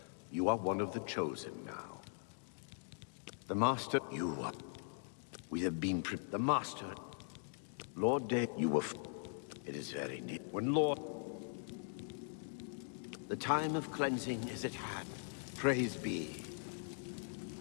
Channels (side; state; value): right; silent; digital silence